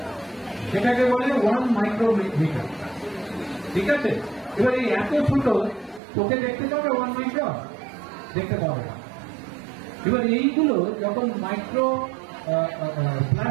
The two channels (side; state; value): left; drops out; at 6.0 s